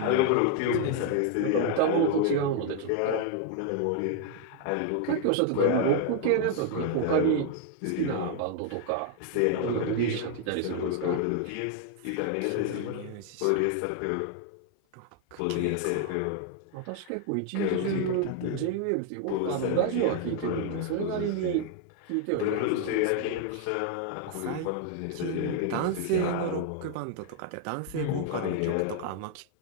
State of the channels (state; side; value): different; both; correlation 0.00